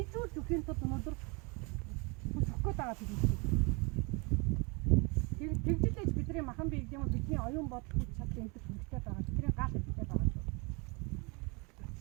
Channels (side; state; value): left; quieter; 30.2 dB